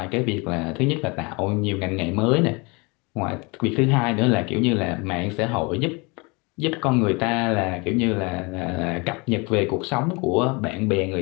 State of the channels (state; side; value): quieter; right; 28.5 dB